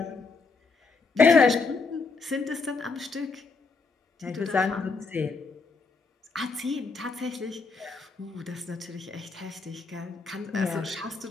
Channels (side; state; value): right; quieter; 4.3 dB